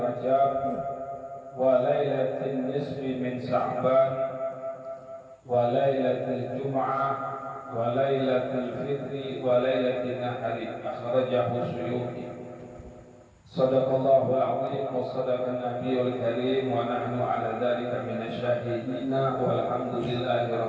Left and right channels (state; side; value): identical; both; correlation 1.00